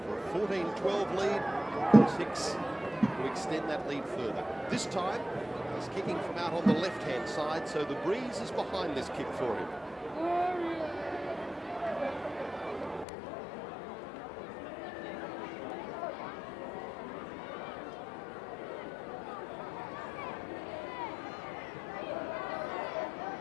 for a 14-12 lead. Chris Hicks to extend that lead further. This time, he's kicking from out on the left-hand side, so the breeze is behind this kick for him.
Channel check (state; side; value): drops out; right; at 13.1 s